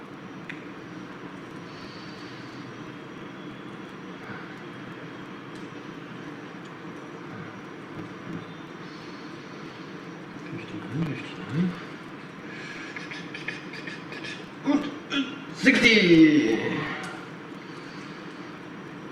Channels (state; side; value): identical; both; correlation 1.00